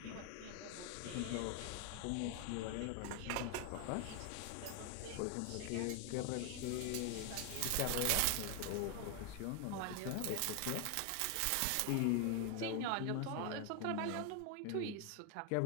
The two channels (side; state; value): both; different; correlation 0.00